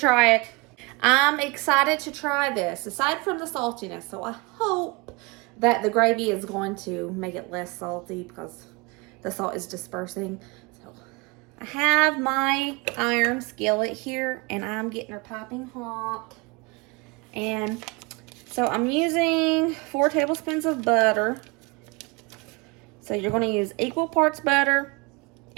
it. I'm excited to try this, aside from the saltiness. So I hope that the gravy is going to make it less salty because the salt is dispersing. So I have my iron skillet here, and I'm getting her piping hot. And so I'm using 4 tablespoons of butter. So you're going to use equal parts butter,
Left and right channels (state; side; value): quieter; left; 27.3 dB